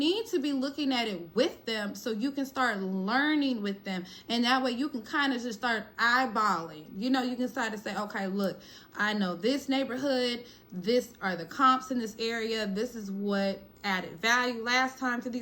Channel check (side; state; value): both; identical; correlation 1.00